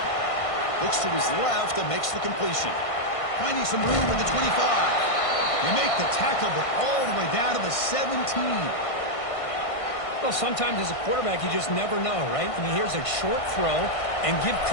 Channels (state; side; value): late; right; 1.5 ms